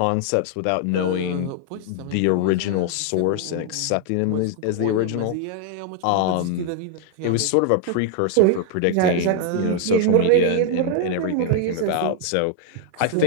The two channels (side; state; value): both; different; correlation 0.00